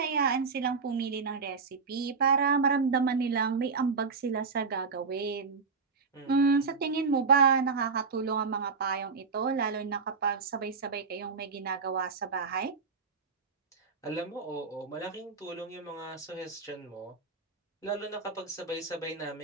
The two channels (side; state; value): left; quieter; 5.0 dB